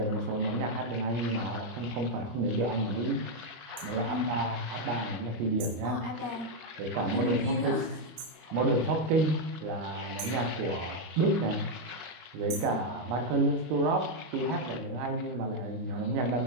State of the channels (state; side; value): late; left; 26 ms